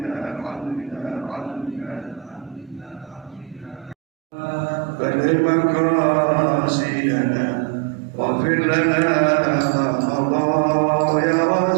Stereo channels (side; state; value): left; drops out; at 4.0 s